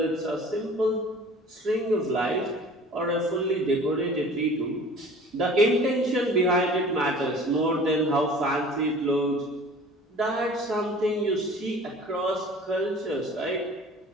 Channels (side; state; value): both; normal; correlation 0.45